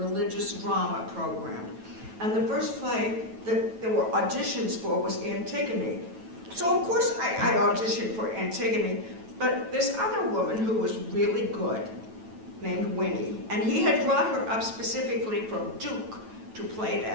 religious drama program. And the first play that there were auditions for was Antigone. So of course I auditioned for Antigone, but this other woman who was really good, named Winnie, and he had brought her up specifically from Duke to play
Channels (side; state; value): left; late; 9.1 ms